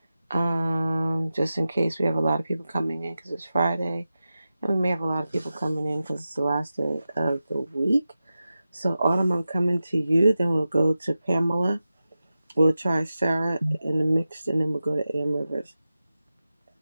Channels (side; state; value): both; inverted; correlation -0.93